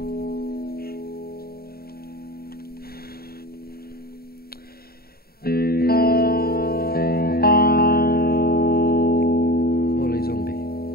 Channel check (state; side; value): late; right; 0.44 ms